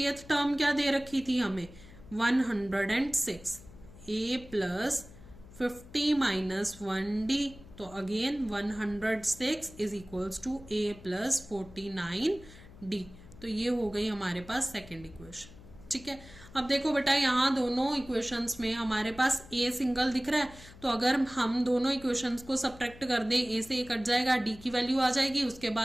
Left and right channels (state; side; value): noise; left; hum, 19 dB below the sound